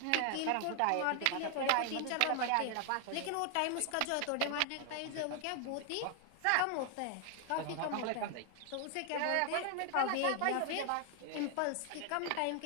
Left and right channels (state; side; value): different; both; correlation 0.00